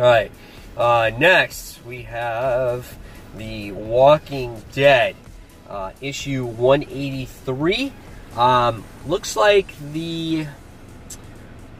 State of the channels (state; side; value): identical; both; correlation 1.00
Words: next we have The Walking Dead, issue 183. Looks like the